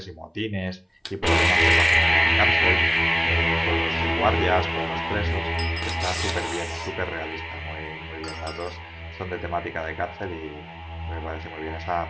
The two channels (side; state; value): both; identical; correlation 1.00